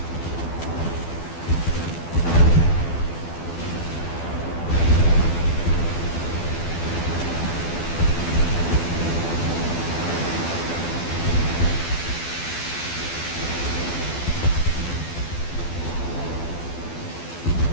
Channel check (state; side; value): late; right; 12 ms